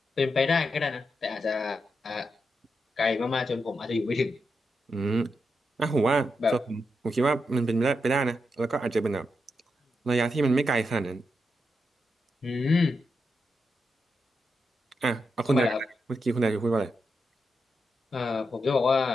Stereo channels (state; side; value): normal; both; correlation 0.85